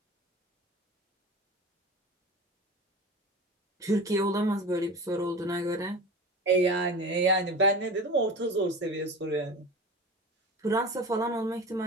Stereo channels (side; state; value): both; normal; correlation 0.32